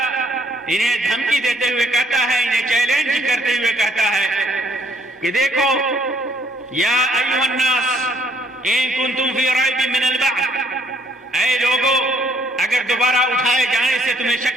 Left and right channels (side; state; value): both; normal; correlation 0.66